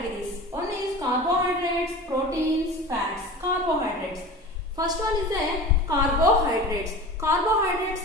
One is carbohydrates, proteins, fats. Carbohydrates. First one is carbohydrates. Carbohydrates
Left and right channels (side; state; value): both; normal; correlation 0.35